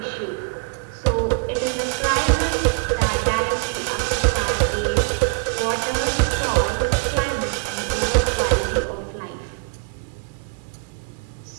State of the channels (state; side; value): quieter; left; 32.7 dB